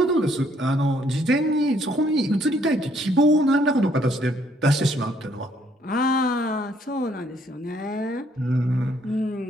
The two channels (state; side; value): normal; both; correlation 0.67